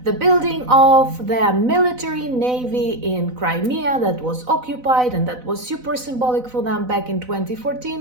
the building of the military navy in Crimea that was occupied and that was super symbolic for them back in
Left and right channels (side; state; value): left; late; 4.0 ms